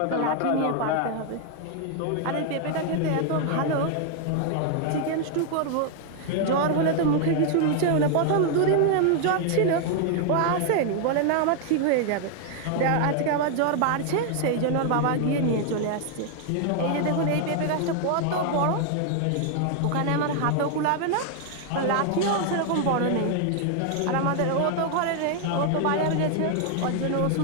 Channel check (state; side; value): different; both; correlation 0.00